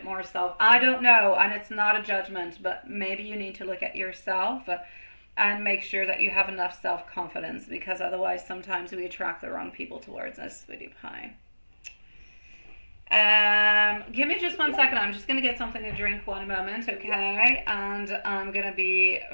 more self. I don't know, and it's not a judgment, but maybe you need to look at yourself and make sure that you have enough self-confidence, because otherwise sometimes we attract the wrong people towards us, sweetie pie. Give me just 1 second. I'm just going to get something to drink 1 moment, okay? And I'm going to be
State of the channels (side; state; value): both; inverted; correlation -1.00